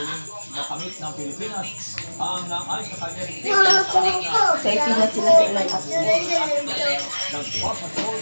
makamit ng Pilipinas ang ayon sa kanya sa ipinas sila sa ilang at nagpapatrol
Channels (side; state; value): both; inverted; correlation -1.00